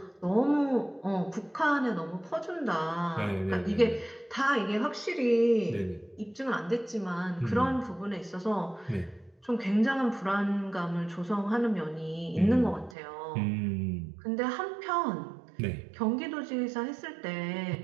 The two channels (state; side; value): drops out; left; at 13.0 s